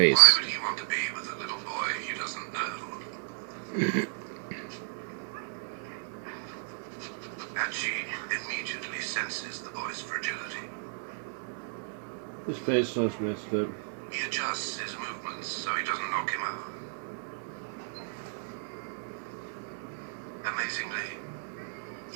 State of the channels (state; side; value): silent; left; 56 dB below the other